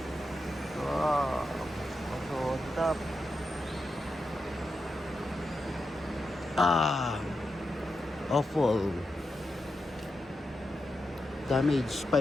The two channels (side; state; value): both; normal; correlation 0.88